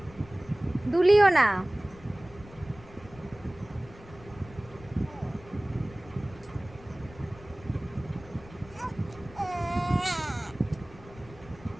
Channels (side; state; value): left; noise; rumble, 20 dB below the sound